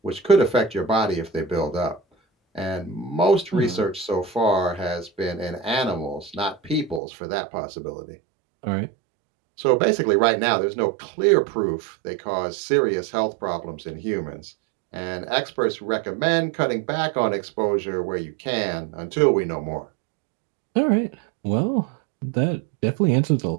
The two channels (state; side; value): drops out; left; at 7.0 s